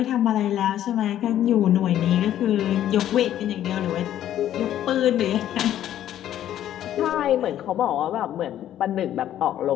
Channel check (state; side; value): quieter; right; 11.6 dB